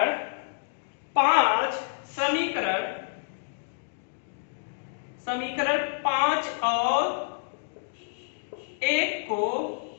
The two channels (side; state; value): right; silent; digital silence